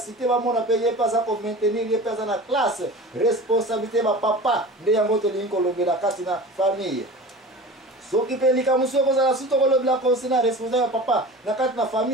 bamona mpe ye mpe aza komaintenir ye mpe aza na classe responsabilité bapapa nde yango tolingi kolobela kati na famille. soki mpe likambo soki ekozala su tokolobela konse na responsable ya papa na kati na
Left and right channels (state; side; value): normal; both; correlation 0.36